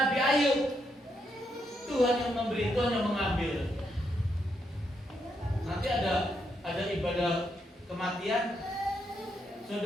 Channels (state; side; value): normal; both; correlation 0.79